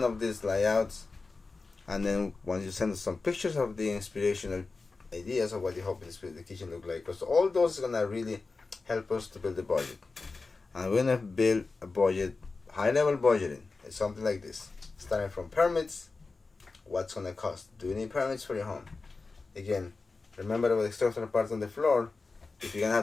of these layouts, and then once you send us some pictures of the inspirational ideas of what you hope the kitchen look like, because all those are gonna really help us to build a budget. And we're gonna build a budget, high level budgeting. It's something like this, starting from permits. What's gonna cost? Do you need permits for your home? Again, remember about the structural parts on the floor. If you're gonna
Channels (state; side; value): quieter; right; 3.9 dB